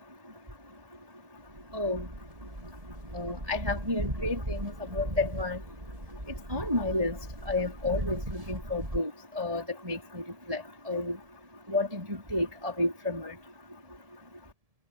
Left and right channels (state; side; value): late; left; 1.7 ms